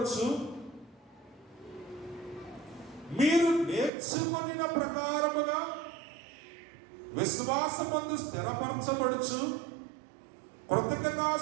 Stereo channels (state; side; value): drops out; left; at 3.9 s